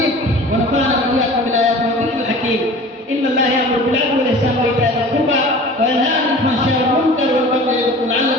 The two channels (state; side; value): normal; both; correlation 0.42